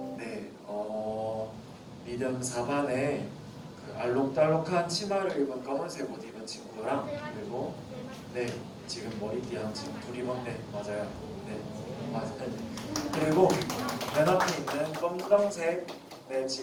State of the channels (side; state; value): both; identical; correlation 1.00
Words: 네, 리듬 4반에 그 알록달록한 치마를 입은 검은색 옷 입은 친구랑 그리고 네, 지금 머리띠 한 친구 둘이 입었네. 맞아요. 네, 맞아요. 그리고 맨 앞에 있는 검정색 네,